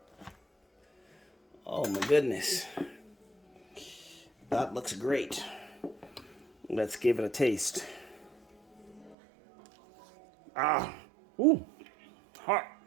Oh my goodness. That looks great. Let's give it a taste. Ah, ooh, hot.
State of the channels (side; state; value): left; drops out; at 9.2 s